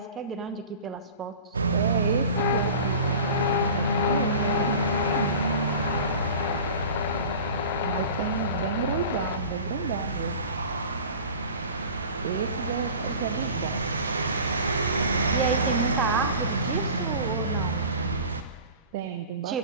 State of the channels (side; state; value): both; inverted; correlation -0.39